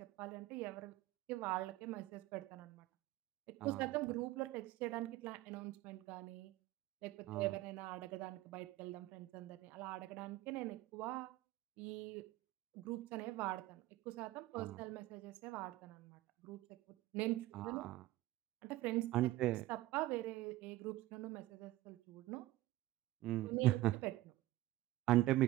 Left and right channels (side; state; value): left; quieter; 16.8 dB